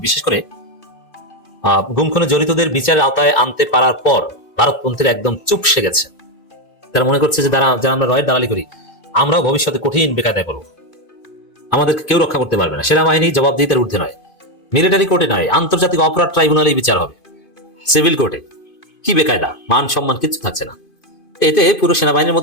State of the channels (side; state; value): right; late; 2.5 ms